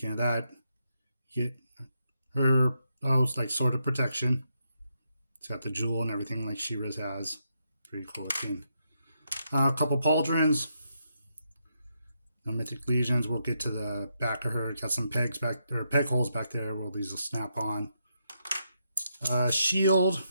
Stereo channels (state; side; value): inverted; both; correlation -0.81